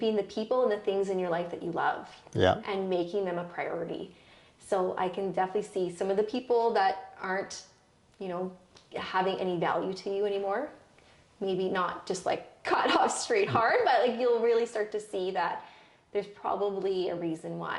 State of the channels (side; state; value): both; identical; correlation 1.00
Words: the people and the things in your life that you love and making them a priority. So I can definitely see some of the people that aren't, you know, having any value to you anymore. Maybe not just like cut off straight hard, but like you'll really start to see that there's probably a reason